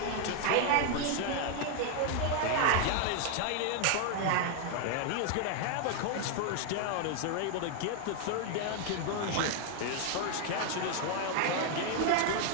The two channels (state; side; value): different; both; correlation 0.00